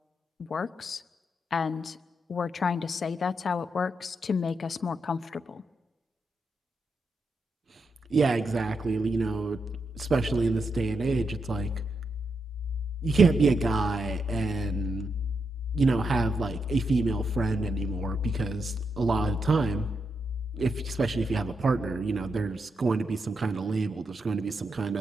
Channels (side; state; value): both; normal; correlation 0.83